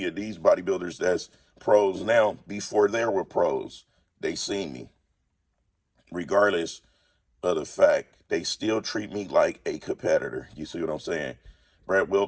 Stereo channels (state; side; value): identical; both; correlation 1.00